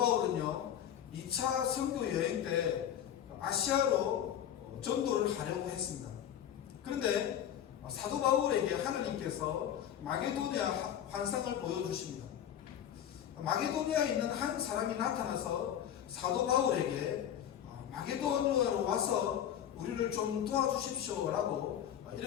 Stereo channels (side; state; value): right; quieter; 10.1 dB